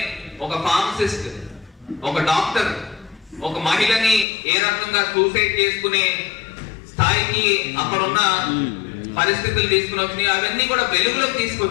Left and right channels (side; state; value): right; drops out; at 4.2 s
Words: ఒక ఫార్మసిస్ట్, ఒక డాక్టర్, ఒక మహిళని ఏ రకంగా సూసైడ్ చేసుకునే స్థాయికి అక్కడున్న పరిస్థితులు తీసుకుని వచ్చినాయి. అవన్నీ కూడా వెలుగులోకి